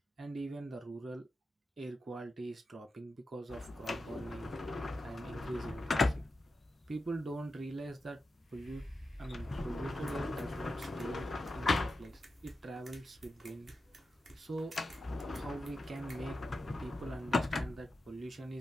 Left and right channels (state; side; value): normal; both; correlation 0.90